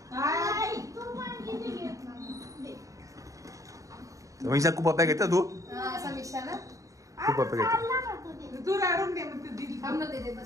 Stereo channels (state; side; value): late; left; 0.16 ms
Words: समीक्षा खूप पप्या घेता तू. समीक्षा ना खूप पप्या घेते. तू राडून दे मग